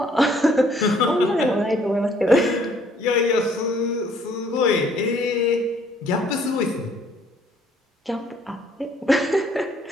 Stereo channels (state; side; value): normal; both; correlation 0.62